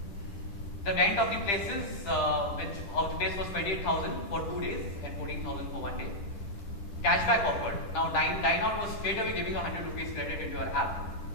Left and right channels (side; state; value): right; late; 10 ms